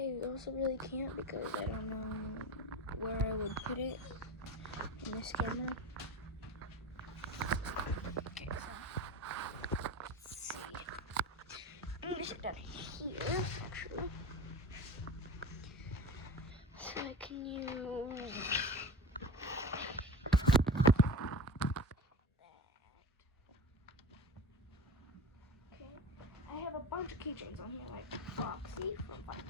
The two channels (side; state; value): both; normal; correlation 0.29